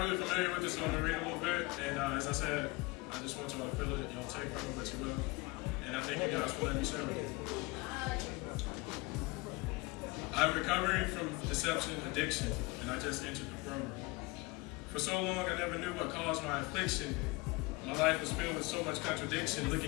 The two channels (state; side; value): quieter; right; 24.5 dB